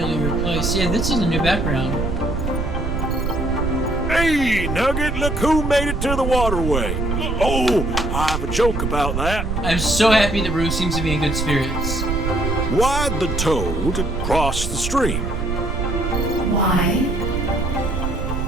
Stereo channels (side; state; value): right; noise; rumble, 2 dB below the sound